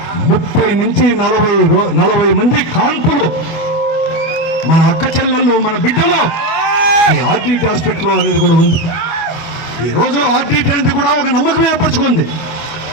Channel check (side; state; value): right; late; 24 ms